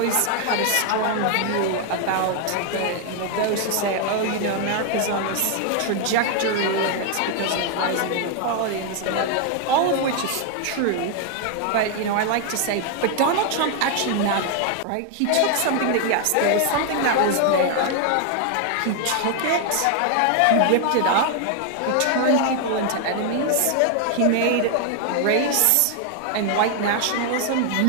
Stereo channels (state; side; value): different; both; correlation 0.00